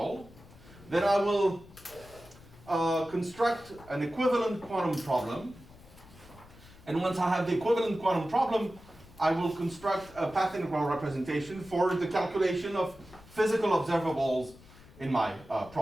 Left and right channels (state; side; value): noise; left; rumble, 22 dB below the sound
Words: Then I will construct an equivalent quantum problem. And once I have the equivalent quantum problem, I will construct a path integral representation for the calculation of physical observables in my